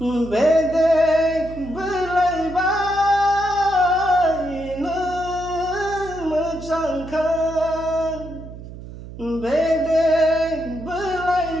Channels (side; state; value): right; noise; hum, 13 dB below the sound